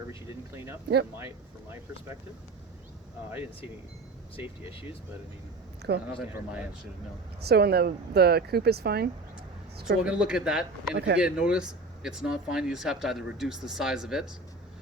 you didn't clean up. Yep. From my perspective, I didn't see any safety issues, but I mean. Cool. Nothing from my end, should no. So, and the coop is fine. So we're gonna look at that, and if you Okay. get a notice, it's not fine. You just have to either reduce the size of it,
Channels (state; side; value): quieter; left; 3.2 dB